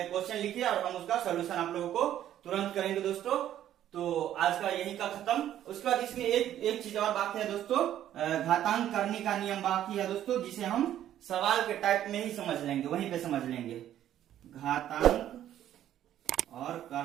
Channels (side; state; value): left; quieter; 11.6 dB